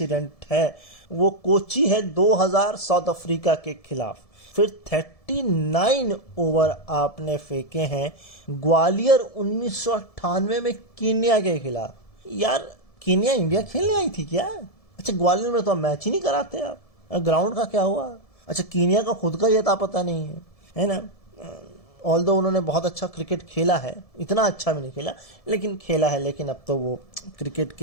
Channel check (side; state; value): right; late; 1.7 ms